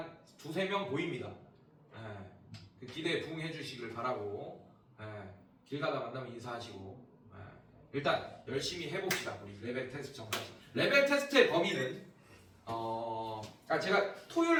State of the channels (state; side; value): identical; both; correlation 1.00